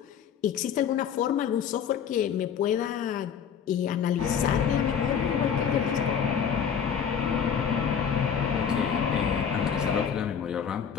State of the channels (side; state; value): right; quieter; 7.6 dB